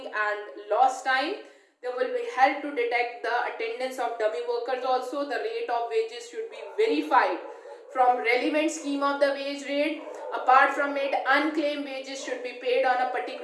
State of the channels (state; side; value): identical; both; correlation 1.00